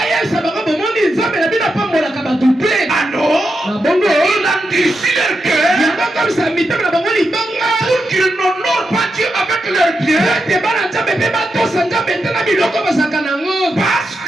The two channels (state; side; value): normal; both; correlation 0.86